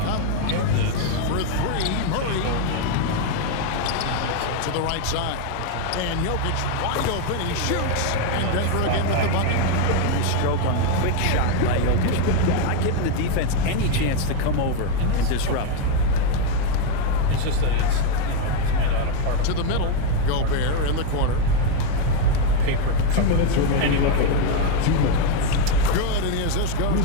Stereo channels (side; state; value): both; different; correlation 0.02